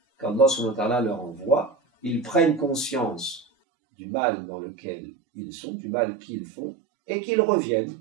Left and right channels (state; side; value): drops out; left; at 3.5 s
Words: qu'Allah subhanahu wa ta'ala leur envoie, ils prennent conscience du mal dans lequel ils sont, du mal qu'ils font, et qu'ils reviennent